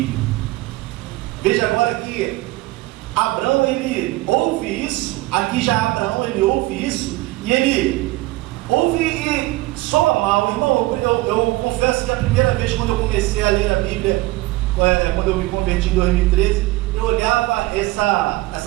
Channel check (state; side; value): quieter; left; 19.5 dB